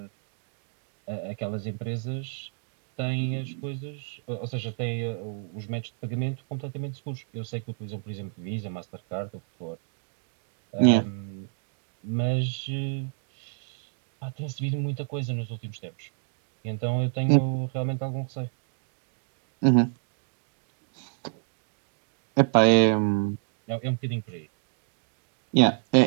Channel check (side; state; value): left; silent; 58 dB below the other